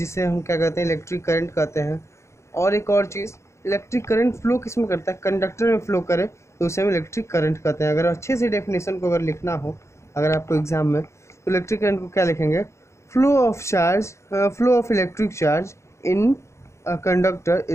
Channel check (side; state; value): right; late; 0.14 ms